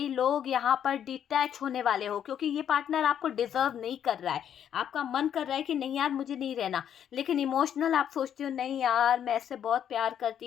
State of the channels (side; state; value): right; quieter; 9.3 dB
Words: लोग यहाँ पर डिटैच होने वाले हो, क्योंकि ये पार्टनर आपको डिजर्व नहीं कर रहा है। आपका मन कर रहा है कि नहीं यार मुझे नहीं रहना, लेकिन इमोशनल आप सोचते हो नहीं यार मैं इससे बहुत प्यार